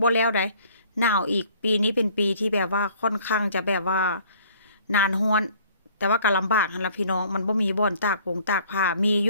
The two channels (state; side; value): inverted; both; correlation -0.56